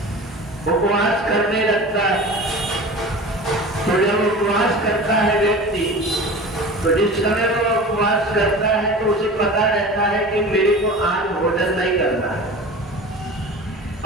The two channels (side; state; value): both; normal; correlation 0.35